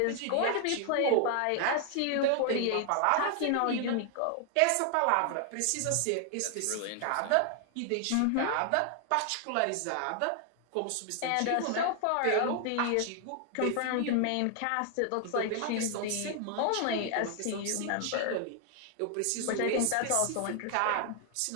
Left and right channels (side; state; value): both; different; correlation 0.00